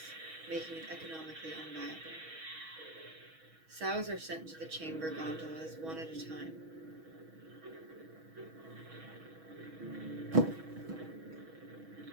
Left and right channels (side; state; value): left; late; 6.2 ms